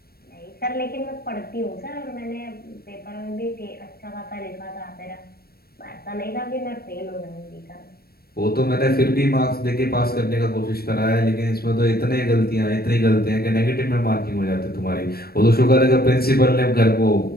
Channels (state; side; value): late; right; 0.44 ms